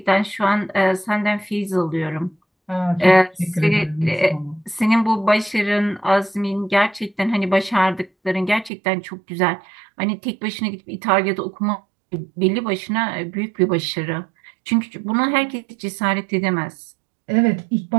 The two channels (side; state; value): left; drops out; at 8.7 s